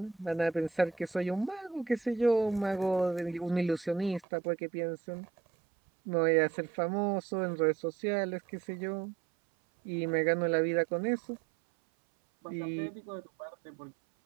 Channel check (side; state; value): left; drops out; at 4.2 s